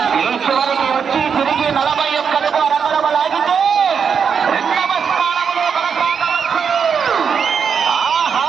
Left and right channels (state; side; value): quieter; left; 6.6 dB